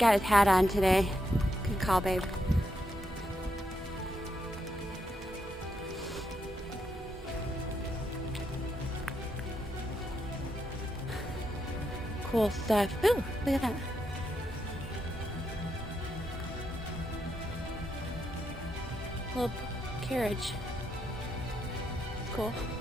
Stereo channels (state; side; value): normal; both; correlation 0.81